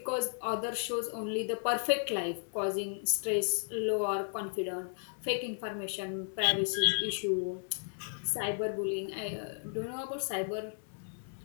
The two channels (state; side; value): silent; right; digital silence